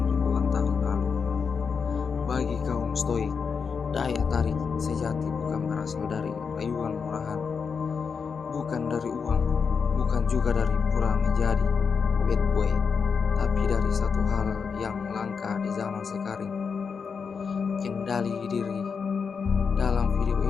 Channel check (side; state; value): right; quieter; 5.9 dB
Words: ribuan tahun lalu. Bagi kaum Stoik, daya tarik sejati bukan berasal dari rayuan murahan, bukan dari uang, bukan juga dari pura menjadi bad boy, tapi dari satu hal yang langka di zaman sekarang: kendali diri. Dalam video